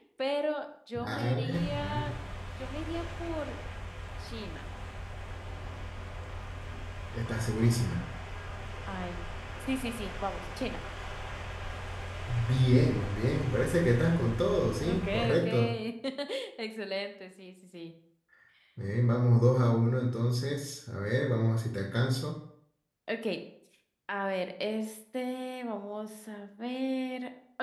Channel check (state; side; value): identical; both; correlation 1.00